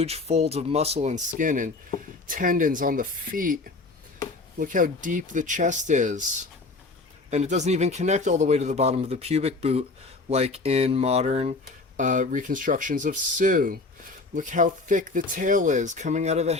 folds of muscle and skin and tendons on the feet. Look how deep the chest is. And it doesn't even connect all the way to the bottom of the pubic boot like in modern reconstructions of Sue. Look how thick the tail is coming out of the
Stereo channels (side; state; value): right; quieter; 3.5 dB